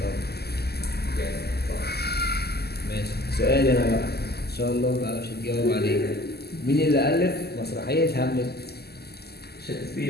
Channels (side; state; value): right; late; 0.46 ms